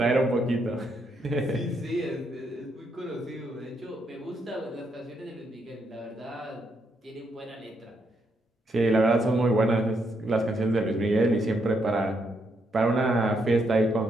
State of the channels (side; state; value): both; normal; correlation 0.77